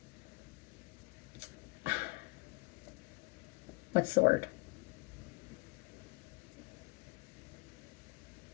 what's the word?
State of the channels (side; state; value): right; quieter; 27.4 dB